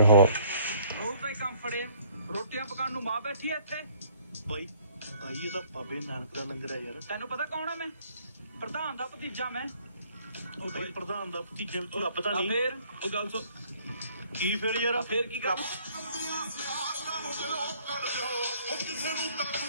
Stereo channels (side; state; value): both; inverted; correlation -0.60